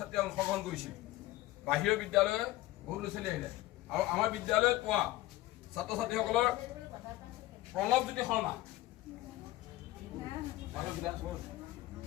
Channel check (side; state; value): right; quieter; 17.0 dB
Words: অংশগ্ৰহণ কৰিছিল। বাহিৰৰ বিদ্যালয়ে বহুত ল'ৰা ছোৱালী আহিলে আৰু আমাৰ বিদ্যালয়ত পোৱা ছাত্ৰ ছাত্ৰীসকলৰ প্ৰণৱজ্যোতি শৰ্মা,